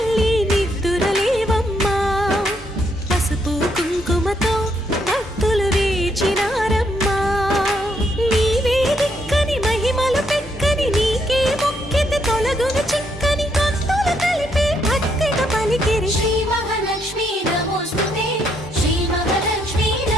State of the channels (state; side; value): normal; both; correlation 0.74